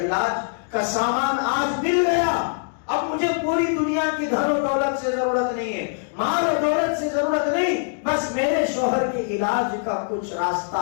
کا سامان آج مل گیا. اب مجھے پوری دنیا کی دھن و دولت سے ضرورت نہیں ہے، مال و دولت سے ضرورت نہیں، بس میرے شوہر کے علاج کا کچھ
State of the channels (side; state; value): right; silent; digital silence